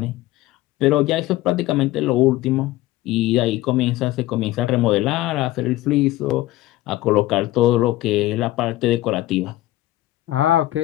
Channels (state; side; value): quieter; right; 16.6 dB